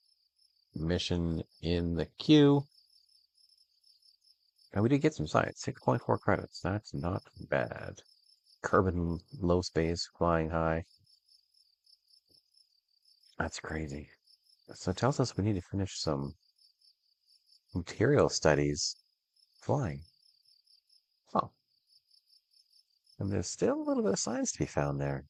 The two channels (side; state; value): both; identical; correlation 1.00